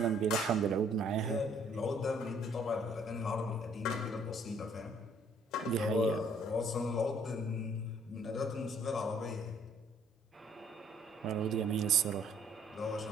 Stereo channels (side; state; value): both; normal; correlation 0.61